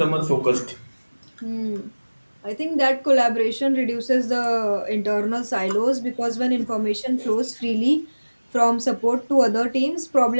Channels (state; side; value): inverted; both; correlation -1.00